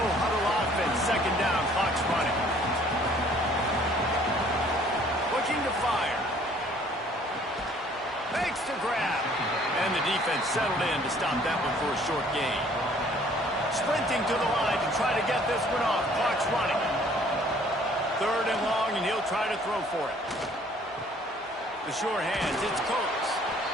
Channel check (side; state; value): both; normal; correlation 0.58